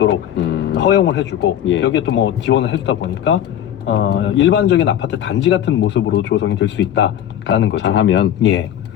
허용을 해주고 예. 여기에 또 뭐 지원을 해주다 보니까 일반적인 아파트 단지 같은 모습으로 조성이 될 수 있다라는 거죠. 잘하면 예,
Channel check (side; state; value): right; quieter; 10.7 dB